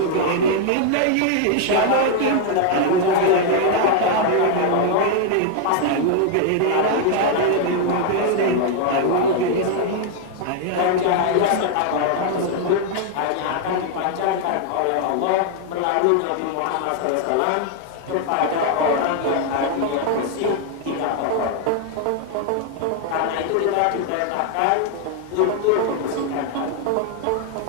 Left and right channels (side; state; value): both; different; correlation 0.00